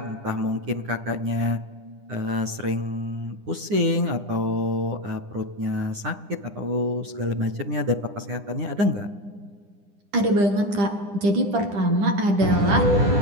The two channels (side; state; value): left; late; 9.9 ms